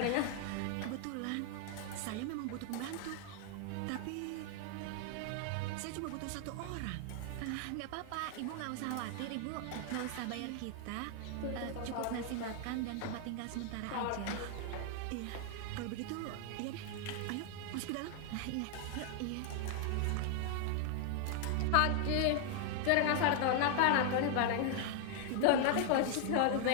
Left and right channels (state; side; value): different; both; correlation 0.00